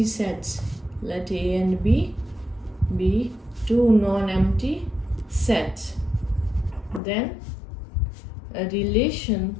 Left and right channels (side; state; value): right; drops out; at 7.0 s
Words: sets. Let A and B be two non-empty sets. Then a relation